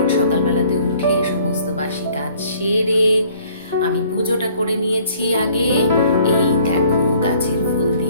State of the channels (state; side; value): inverted; both; correlation -0.57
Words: সকালবেলাতে উঠে সমস্ত বাসি কাজ সেরে আমি পুজোটা করে নিয়েছি আগে। এই দেখো গাছের ফুল